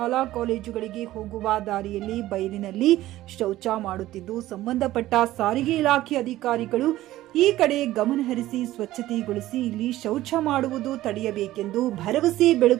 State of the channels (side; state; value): left; quieter; 15.3 dB